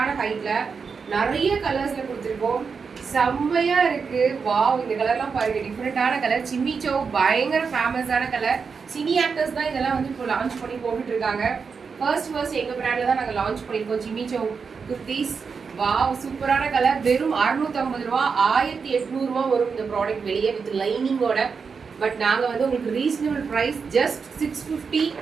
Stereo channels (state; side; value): quieter; left; 5.5 dB